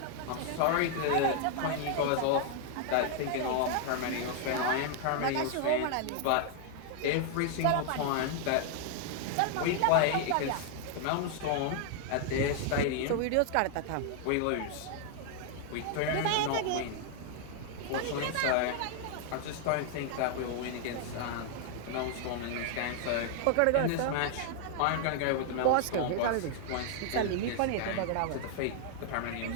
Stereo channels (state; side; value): different; both; correlation 0.00